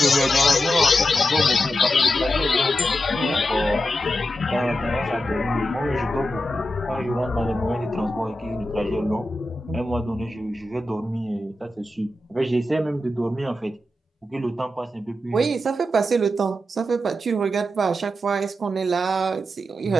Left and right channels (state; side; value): normal; both; correlation 0.88